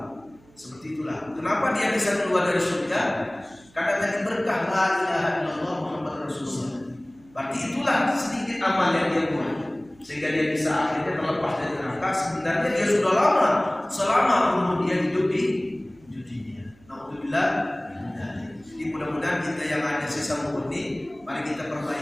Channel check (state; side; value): noise; right; hum, 28 dB below the sound